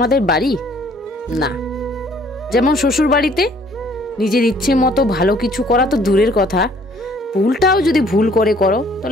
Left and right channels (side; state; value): both; normal; correlation 0.59